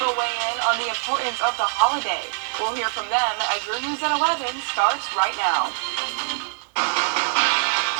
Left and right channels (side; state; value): left; silent; 63 dB below the other